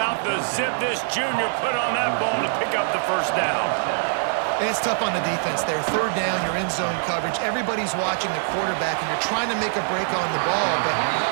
the zip this junior put on that ball to pick up the first down? And it's tough on the defense there. 3rd down, you're in zone coverage. Everybody's watching the quarterback, and you're trying to make a break on the ball, but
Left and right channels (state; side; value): silent; left; digital silence